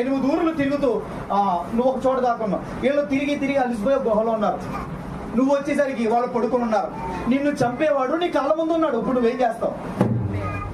8 ఊర్లు తిరుగుతూ నువ్వు ఒక చోట దాక్కున్నావు. వీళ్ళు తిరిగి అలసిపోయే గుహలో ఉన్నారు. నువ్వు వచ్చేసరికి వాళ్ళు పడుకుని ఉన్నారు. నిన్ను చంపేవాడు నీ కళ్ళ ముందు ఉన్నాడు. ఇప్పుడు నువ్వేం చేస్తావు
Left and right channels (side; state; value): both; identical; correlation 1.00